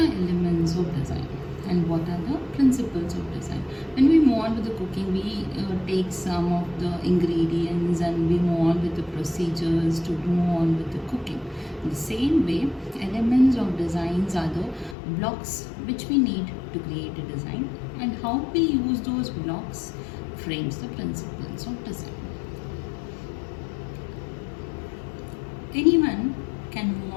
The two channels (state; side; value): drops out; right; at 15.0 s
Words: elements of design and what are the principles of design. When we move on with the cooking, we take some of the ingredients and we move on with the procedures to move on with the cooking. In the same way, elements of designs are the blocks which we need to create a design, and how we use those blocks frames the principles of design. Anyone can move